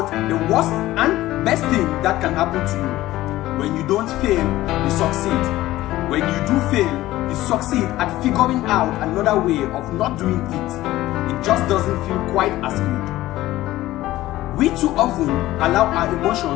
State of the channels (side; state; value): right; quieter; 16.1 dB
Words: the worst and best thing that can happen to you. When you don't fail, you succeed. When you do fail, you succeed at figuring out another way of not doing it. It just doesn't feel quite as good. We too often allow our